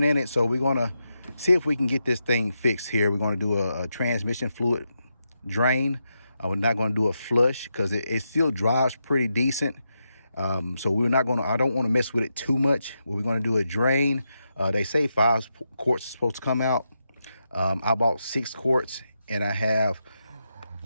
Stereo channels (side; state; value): both; inverted; correlation -0.85